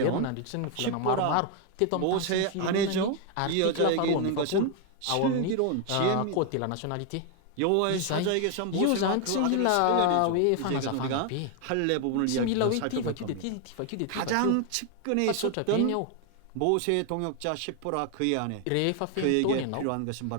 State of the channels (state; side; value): different; both; correlation 0.01